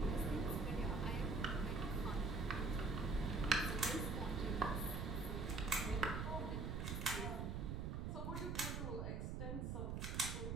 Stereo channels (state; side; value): noise; right; rumble, 2 dB below the sound